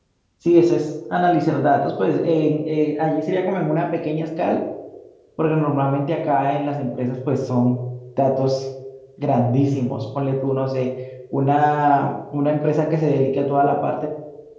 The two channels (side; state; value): both; identical; correlation 1.00